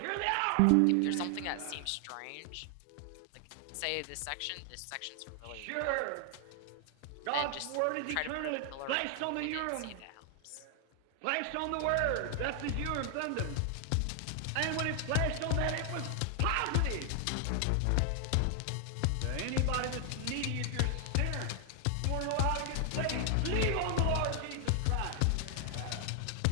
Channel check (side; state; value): both; different; correlation 0.00